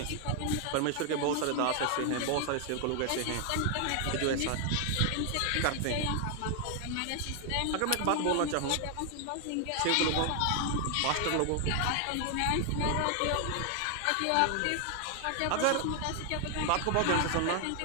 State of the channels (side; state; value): both; different; correlation 0.00